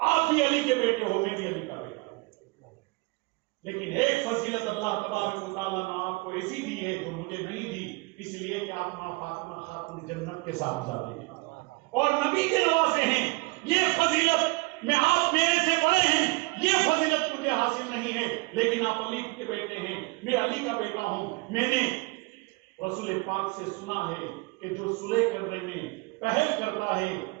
بھی علی کے بیٹے ہو، میں بھی علی کا بیٹا ہوں، لیکن ایک فضیلت اللہ تبارک و تعالیٰ نے آپ کو ایسی دی ہے جو مجھے نہیں دی، اس لیے کہ آپ ماں فاطمہ خاتون جنت کے ساتھ جاتے ہیں اور نبی کے نواسے ہیں۔ یہ فضیلت میں آپ میرے سے بڑے ہیں، یہ فضیلت مجھے حاصل نہیں ہے، لیکن آپ علی کے بیٹے ہیں، میں علی کا بیٹا ہوں۔ میں نے رسول پاک سے سنا ہے کہ جو صلح کرنے میں پہل کرتا ہے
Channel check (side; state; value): left; quieter; 25.8 dB